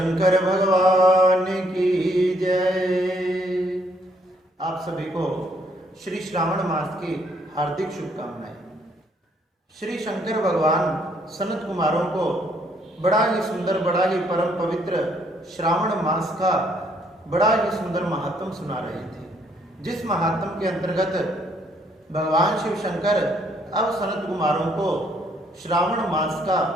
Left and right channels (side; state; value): both; normal; correlation 0.68